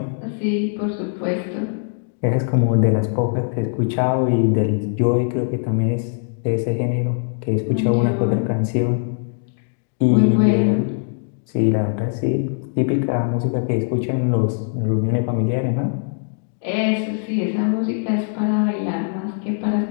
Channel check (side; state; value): right; silent; 64 dB below the other